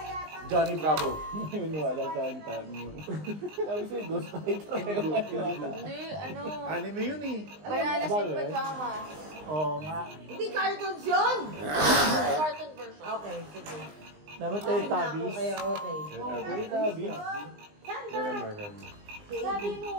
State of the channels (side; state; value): left; late; 20 ms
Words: Johnny Bravo. Wala sa akin tayo. Sabi sa'yo, Ghost Fighter. Hindi, ano. Anime yun eh. Bananas in pajamas. Oo nga. Hindi cartoons yun! Cartoon version. Okay, sige. Dapat tayo tabis. Okay, okay. Tayo tabis. Meron. Sabi